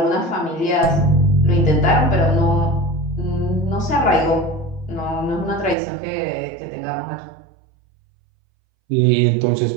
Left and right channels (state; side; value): drops out; left; at 5.8 s